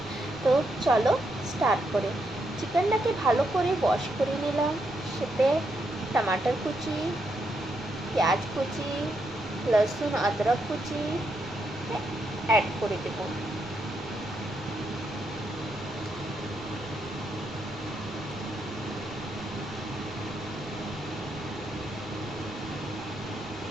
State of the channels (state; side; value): noise; right; rumble, 18 dB below the sound